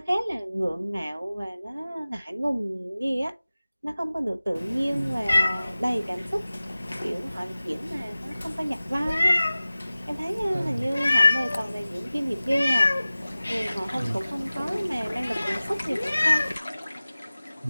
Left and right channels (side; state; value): both; inverted; correlation -0.97